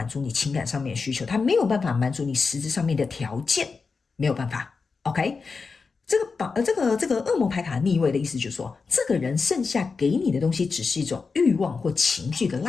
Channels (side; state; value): right; quieter; 4.7 dB